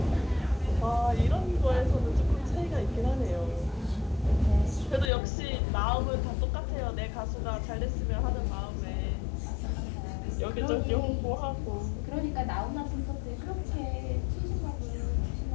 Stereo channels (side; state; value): right; drops out; at 5.1 s